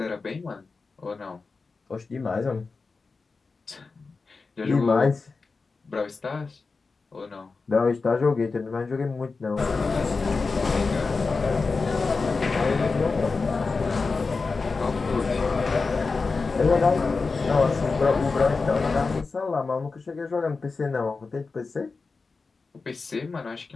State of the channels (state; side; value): quieter; right; 4.3 dB